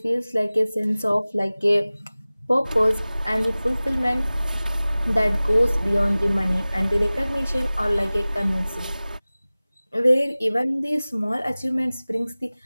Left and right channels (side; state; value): both; inverted; correlation -0.99